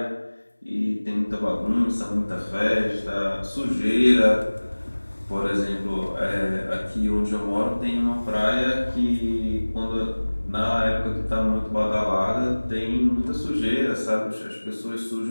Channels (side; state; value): both; inverted; correlation -1.00